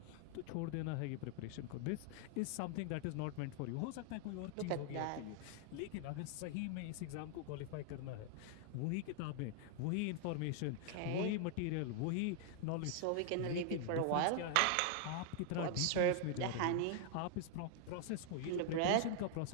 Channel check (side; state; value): both; different; correlation 0.00